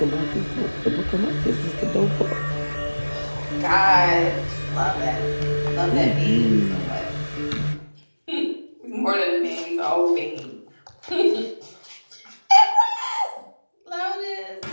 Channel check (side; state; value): both; inverted; correlation -1.00